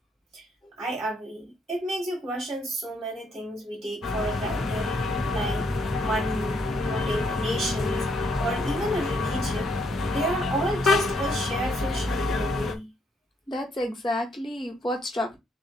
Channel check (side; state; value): both; normal; correlation 0.72